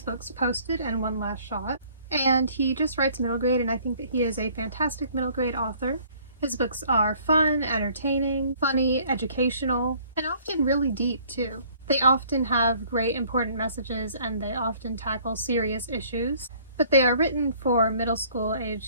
Posted and One Last Shot. And he just writes middle grade and I think that he is a fantastic middle grade author. His books are fun, entertaining, funny, educational, and often really deep too. They often have great important messages and they often tackle serious issues, but they are written for middle school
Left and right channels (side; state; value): both; inverted; correlation -0.57